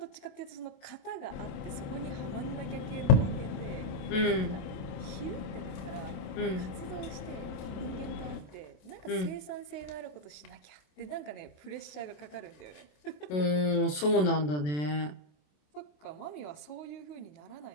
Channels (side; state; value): right; late; 27 ms